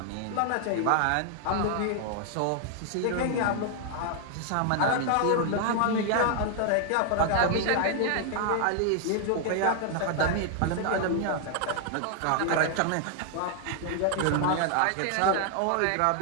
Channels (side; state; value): both; different; correlation 0.00